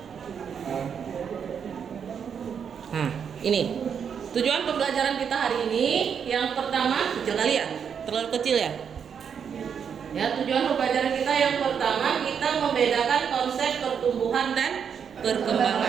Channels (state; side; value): quieter; left; 7.3 dB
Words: Nah, ini. Tujuan pembelajaran kita hari ini yang pertama, kecil kali ya? Terlalu kecil ya? Ya, tujuan pembelajaran kita yang pertama kita membedakan konsep pertumbuhan dan